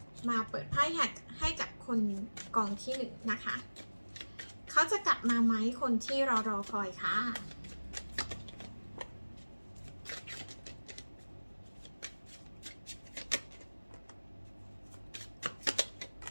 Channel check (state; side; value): inverted; both; correlation -1.00